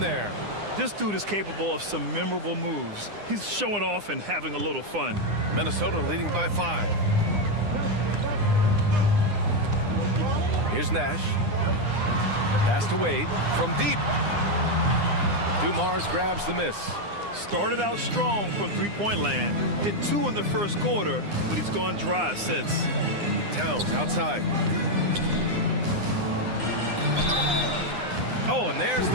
This dude is capable of some memorable moves. He's showing off and having a little fun. Minnesota leading by 5. Here's Nash. Pass to Wade from deep. Dumars grabs the miss. Started out strong from three-point land. Hit 2 in the first quarter, but he's gone dry since. Towns outside. Oh, and there's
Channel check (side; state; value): left; late; 9.8 ms